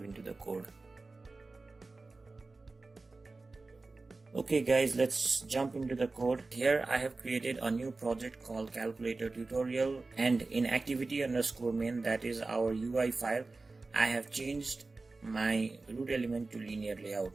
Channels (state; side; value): quieter; left; 3.6 dB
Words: into the code. Okay guys, let's jump into the code. Here I have created a new project called calculator tutorial, and in activity_main, that is our UI file, I have changed my root element to linear layout.